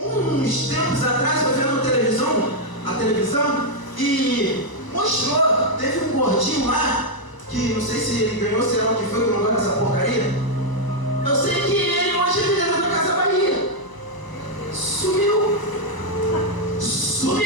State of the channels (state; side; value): late; right; 1.0 ms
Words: Uns tempos atrás eu vendo a televisão e mostrou, teve um gordinho lá, que não sei se ele ganhou, sei lá o que foi, que não gosta dessa porcaria. Eu sei que ele hoje é vendedor da Casa Bahia. Sumiu.